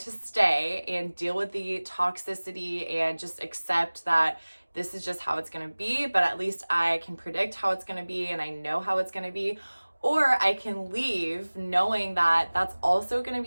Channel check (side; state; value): both; inverted; correlation -1.00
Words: stay and deal with the toxicity and just accept that this is just how it's going to be, but at least I can predict how it's going to be and I know how it's going to be. Or I can leave knowing that that's also going to